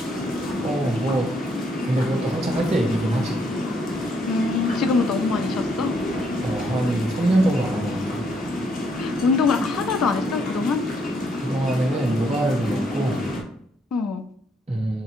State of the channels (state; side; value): normal; both; correlation 0.72